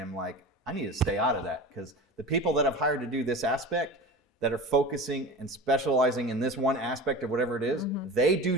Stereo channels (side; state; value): both; normal; correlation 0.32